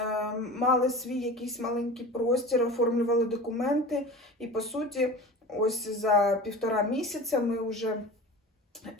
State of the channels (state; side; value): normal; both; correlation 0.34